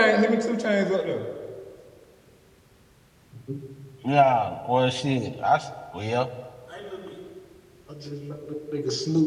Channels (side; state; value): both; identical; correlation 1.00